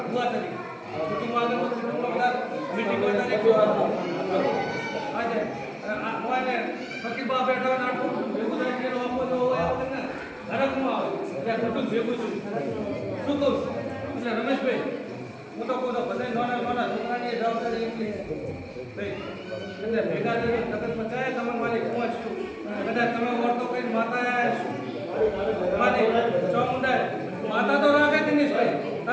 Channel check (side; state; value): both; identical; correlation 1.00